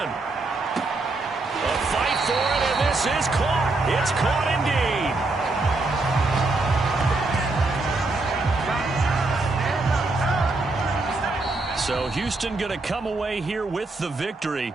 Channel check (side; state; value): left; quieter; 3.2 dB